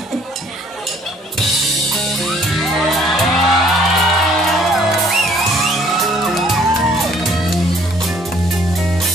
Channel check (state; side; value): normal; both; correlation 0.60